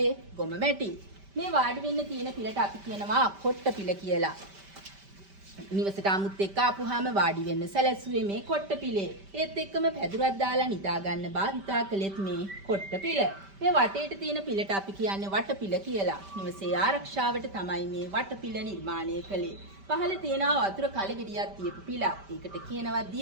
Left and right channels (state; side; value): late; left; 5.1 ms